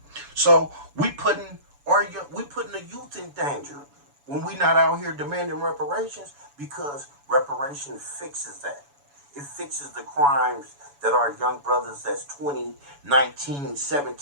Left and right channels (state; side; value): late; left; 7.1 ms